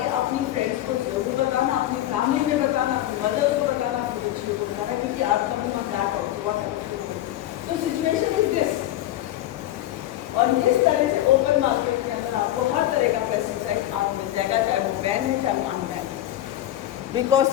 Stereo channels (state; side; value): quieter; right; 13.8 dB